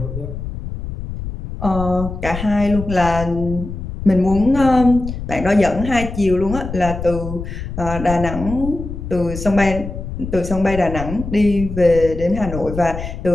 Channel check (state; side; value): noise; left; rumble, 8 dB below the sound